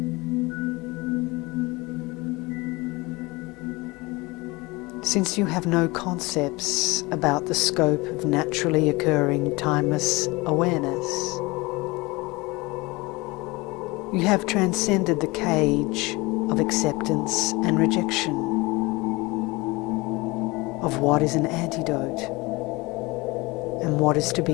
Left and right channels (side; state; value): right; quieter; 23.5 dB